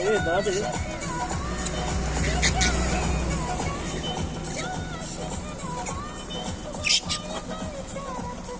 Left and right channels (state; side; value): identical; both; correlation 1.00